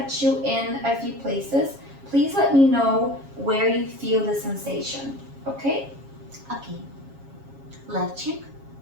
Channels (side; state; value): left; late; 7.3 ms